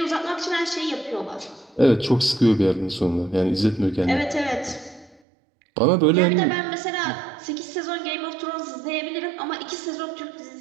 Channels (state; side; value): drops out; left; at 5.2 s